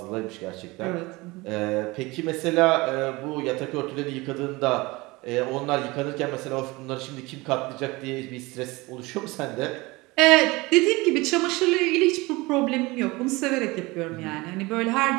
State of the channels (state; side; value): quieter; left; 22.7 dB